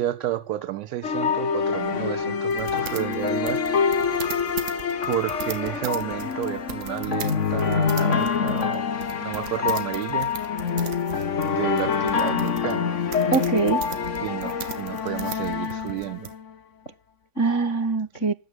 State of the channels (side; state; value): right; late; 3.5 ms